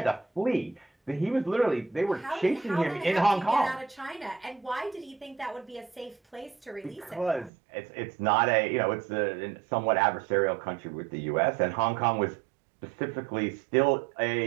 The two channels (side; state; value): left; drops out; at 7.5 s